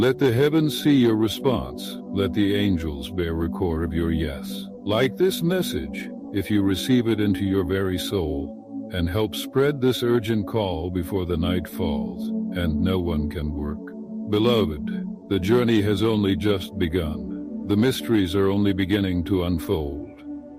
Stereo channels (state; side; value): identical; both; correlation 1.00